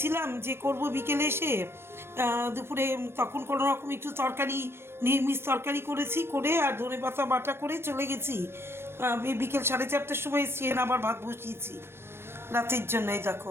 যে করব বিকেলে এসে। দুপুরে তখন কোনো রকম একটু তরকারি, নিরামিষ তরকারি করেছি, করে আর ধনেপাতা বাটা করে চলে গেছি। বিকেল 4:30টার সময় এসছি, আবার ভাত বসিয়েছি রাতের জন্য। এই দেখো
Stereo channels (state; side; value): late; left; 0.12 ms